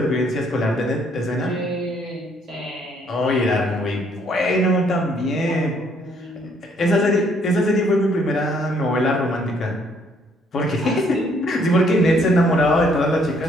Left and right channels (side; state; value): both; normal; correlation 0.66